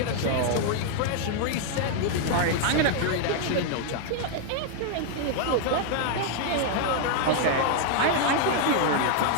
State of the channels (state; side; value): different; both; correlation 0.00